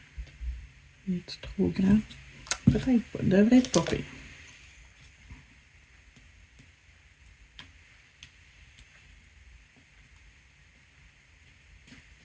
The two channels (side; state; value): both; identical; correlation 1.00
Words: est trop grand? Peut-être pas, devrait être pas pire.